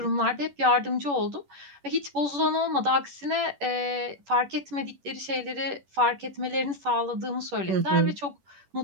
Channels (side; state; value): left; late; 11 ms